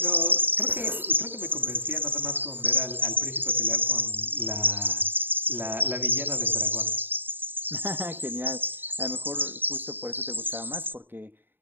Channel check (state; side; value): late; left; 0.095 ms